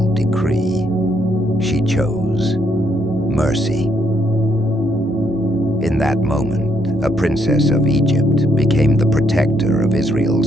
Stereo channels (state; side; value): normal; both; correlation 0.73